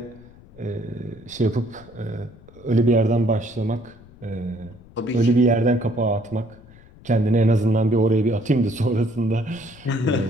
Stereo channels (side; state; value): left; noise; rumble, 23 dB below the sound